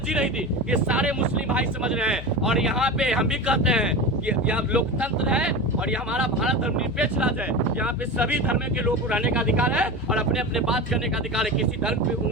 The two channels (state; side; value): noise; left; hum, 10 dB below the sound